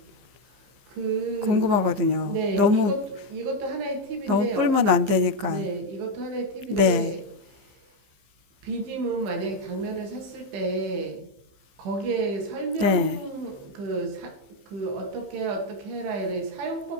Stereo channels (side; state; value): left; late; 15 ms